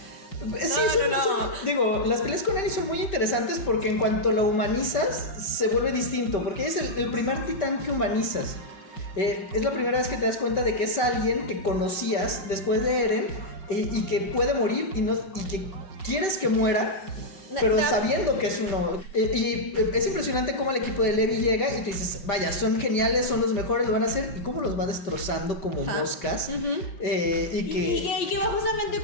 Digo, las peleas con Eren son muy interesantes porque en cuanto la humanizas, se vuelve distinto. Porque es el primer titán que humanizas. Es la primera vez que te das cuenta de que es alguien que conocías después de Eren y que puede morir y que quieres que muera, pero sabiendo que es uno. Y es impresionante cómo el equipo de Levi llega y tú dices, vaya, son geniales, son los mejores, lo van a hacer, y cómo los va destrozando como moscas. Y que va justamente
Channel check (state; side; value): late; right; 5.2 ms